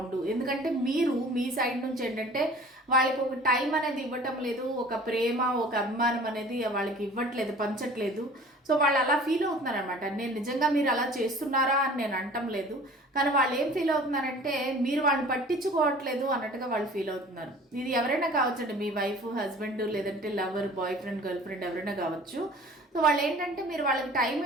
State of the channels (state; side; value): normal; both; correlation 0.46